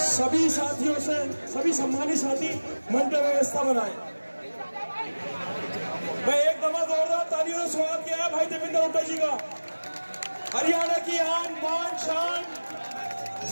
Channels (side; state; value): both; inverted; correlation -1.00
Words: सभी साथियों से, सभी सम्मानित साथी मंच व्यवस्था बनाए। मैं एक दफा जोरदार तालियों से स्वागत किया है भाई देवेंद्र हुड्डा जी का। हरियाणा की आन बान शान,